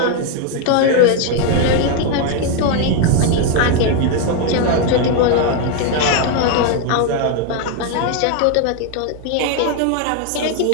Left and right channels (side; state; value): both; different; correlation 0.01